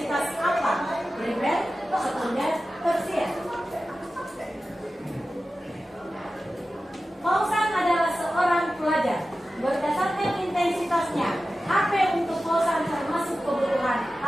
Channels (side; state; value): both; normal; correlation 0.94